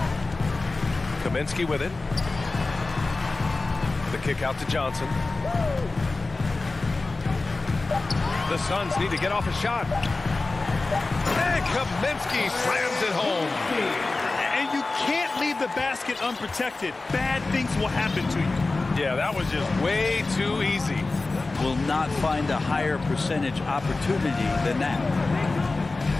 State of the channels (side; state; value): right; quieter; 3.4 dB